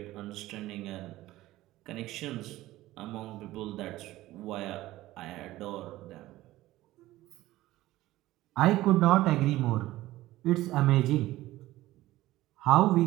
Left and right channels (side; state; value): left; quieter; 16.5 dB